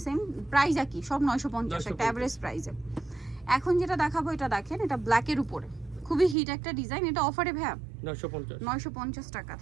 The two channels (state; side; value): drops out; left; at 6.4 s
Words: সেম। প্রাইস একই, সব 950, একটা এভারেজ প্রাইসে। এখন যেটা দেখাবো, এটা দেখেন, এটা ব্ল্যাকের উপরে খুবই হিট একটা ডিজাইন। এটা অফারে ভাইয়া 950। 950 টাকা।